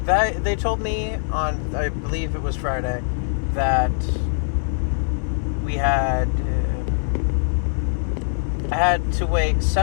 They told me on, I believe it was Friday, that I had to wait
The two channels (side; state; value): right; silent; 64 dB below the other